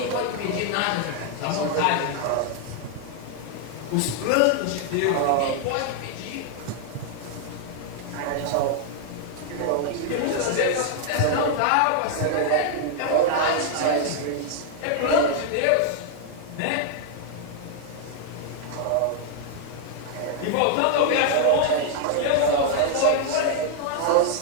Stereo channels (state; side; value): different; both; correlation 0.00